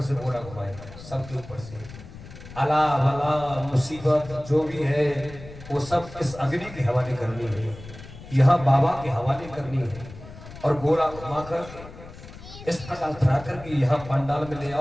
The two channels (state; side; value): noise; left; rumble, 16 dB below the sound